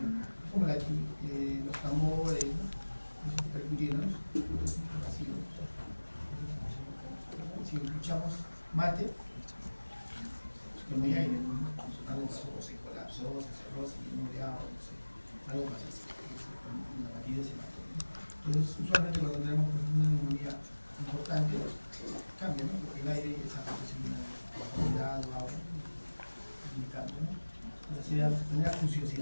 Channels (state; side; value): inverted; both; correlation -1.00